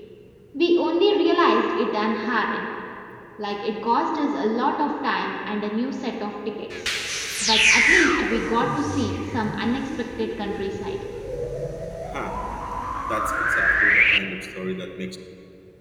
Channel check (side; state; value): both; identical; correlation 1.00